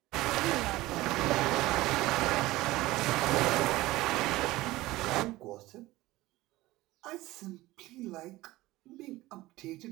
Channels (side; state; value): left; quieter; 18.2 dB